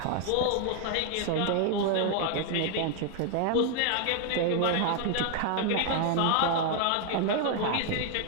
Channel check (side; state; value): both; different; correlation 0.00